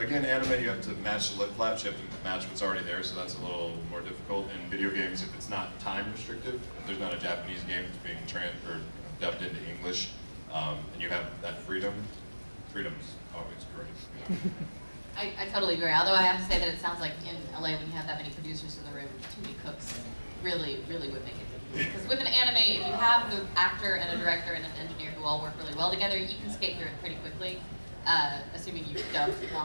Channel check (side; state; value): both; inverted; correlation -1.00